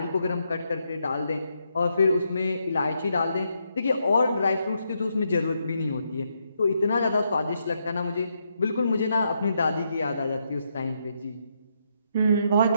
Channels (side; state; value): both; inverted; correlation -0.79